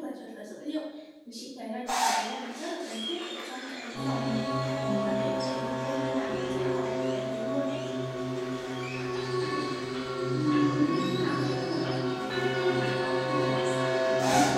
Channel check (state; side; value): identical; both; correlation 1.00